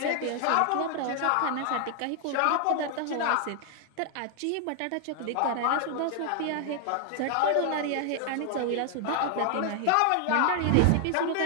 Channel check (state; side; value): different; both; correlation 0.00